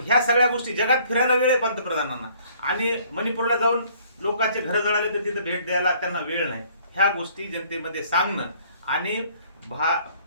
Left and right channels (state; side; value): inverted; both; correlation -0.59